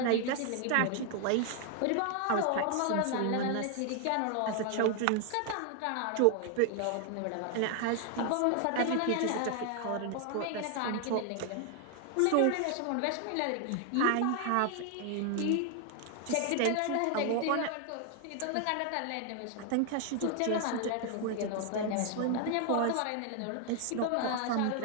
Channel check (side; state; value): both; different; correlation 0.00